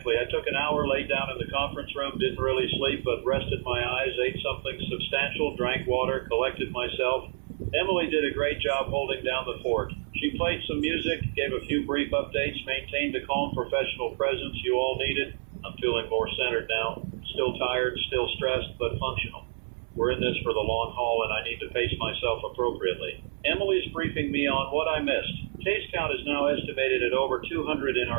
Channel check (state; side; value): silent; left; 59 dB below the other